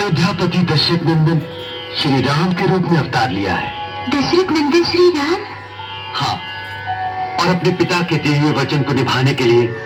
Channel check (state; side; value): identical; both; correlation 1.00